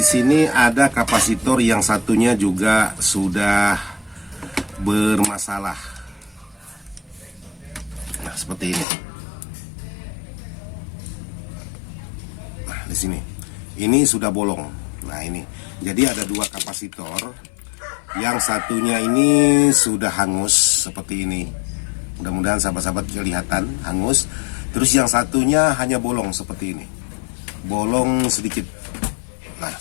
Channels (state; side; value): drops out; right; at 8.8 s